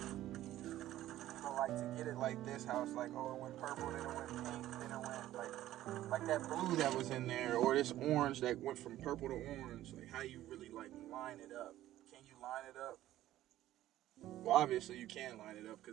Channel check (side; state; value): left; quieter; 14.0 dB